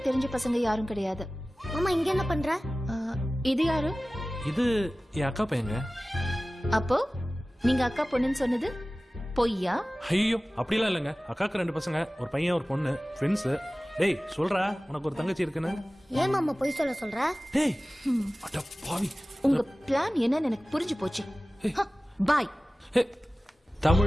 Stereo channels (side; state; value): both; normal; correlation 0.97